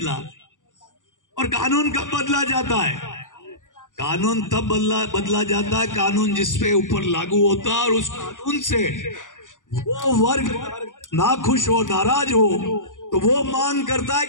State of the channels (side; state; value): right; late; 0.87 ms